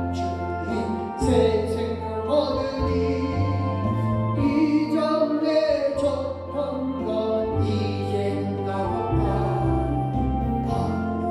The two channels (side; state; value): both; identical; correlation 1.00